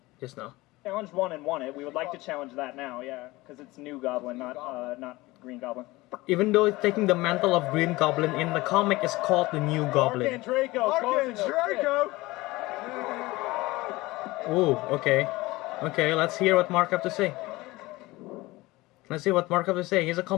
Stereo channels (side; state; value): right; quieter; 20.4 dB